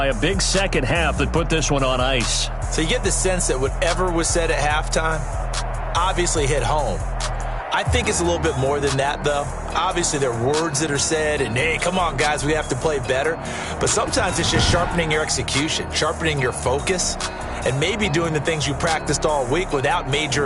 a big second half that put this one on ice. So you get the sense that whatever was said at halftime obviously hit home. I think it's a little bit more than that, though. Obviously, there are words that are said, and, hey, come on, guys, we have to play better. But sometimes it's just sharpening your execution, sharpening your focus, and maybe doing the things you practiced all week without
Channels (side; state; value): both; identical; correlation 1.00